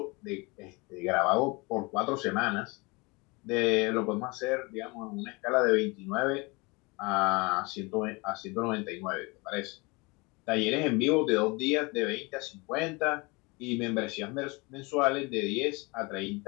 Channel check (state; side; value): quieter; right; 26.8 dB